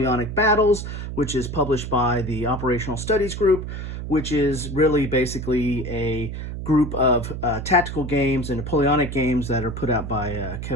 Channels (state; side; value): noise; right; hum, 6 dB below the sound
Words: Battles, which is published by the Operational Studies Group, which is really basically a group of tactical games and Napoleonic games that are put out by